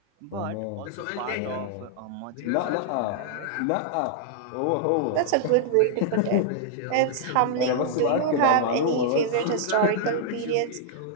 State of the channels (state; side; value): different; both; correlation -0.01